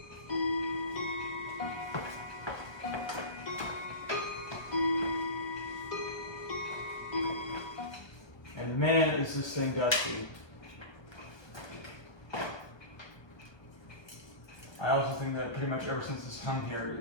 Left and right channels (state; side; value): late; right; 1.2 ms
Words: And man, is this thing dusty. I also think that pretty much ever since it's hung here,